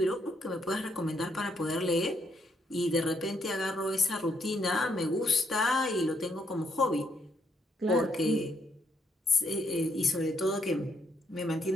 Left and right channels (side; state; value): both; normal; correlation 0.74